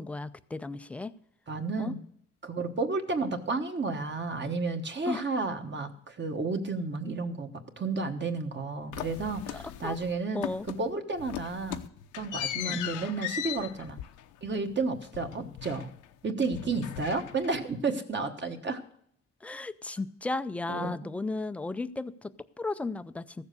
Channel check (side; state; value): both; normal; correlation 0.40